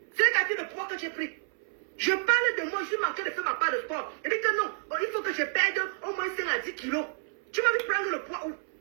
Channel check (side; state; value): left; silent; 58 dB below the other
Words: C'est quelqu'un de poids que j'ai pris. Je parle de moi, je suis manqué de faire ma part de sport. Je dis que non, il faut que je perde au moins 5 à 10 kilos. Tu m'as vu prendre le poids où?